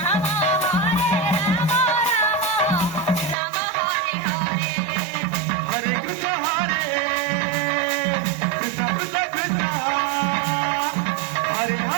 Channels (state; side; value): drops out; left; at 3.4 s